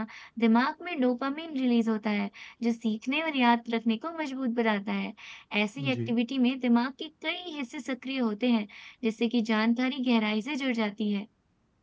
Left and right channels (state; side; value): identical; both; correlation 1.00